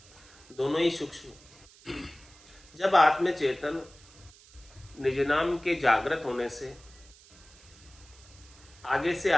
दोनों ही सूक्ष्म। जब आत्मचेतन निज नाम के जागृत होने से आगे से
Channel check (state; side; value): noise; right; hiss, 24 dB below the sound